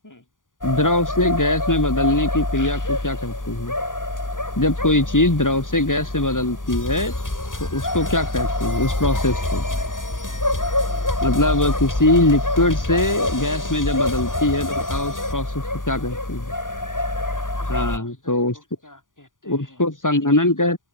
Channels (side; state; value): right; late; 0.88 ms